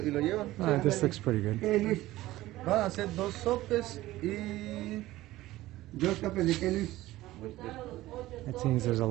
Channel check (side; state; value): left; quieter; 16.7 dB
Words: y lo llevan. This looks pretty good. Van a hacer 2 sopes y 2 sopes de qué, Luis. It seems there's a